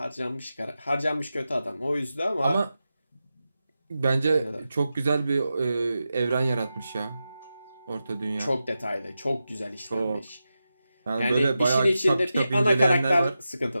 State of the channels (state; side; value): inverted; both; correlation -0.91